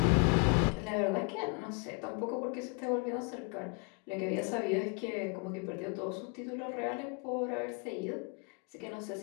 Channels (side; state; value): right; quieter; 36.1 dB